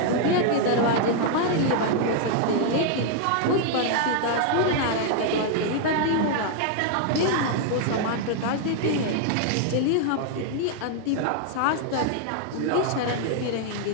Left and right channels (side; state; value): both; different; correlation 0.00